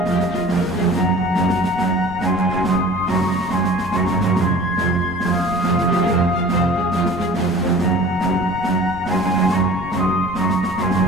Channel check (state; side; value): noise; left; rumble, 15 dB below the sound